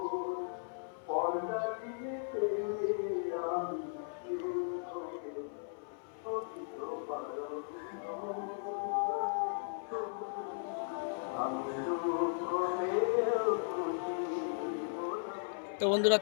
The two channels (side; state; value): right; silent; 53 dB below the other